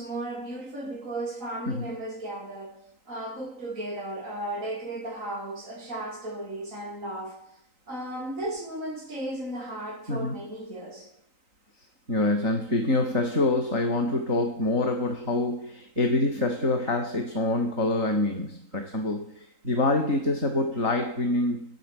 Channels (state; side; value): late; left; 3.9 ms